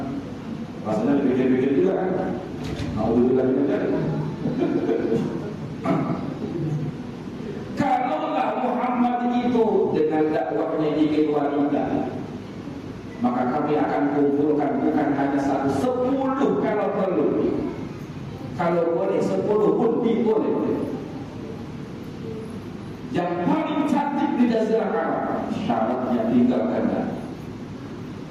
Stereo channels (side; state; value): both; identical; correlation 1.00